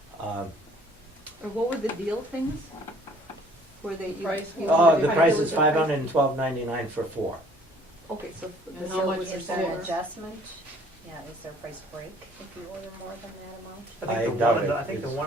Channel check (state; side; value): normal; both; correlation 0.56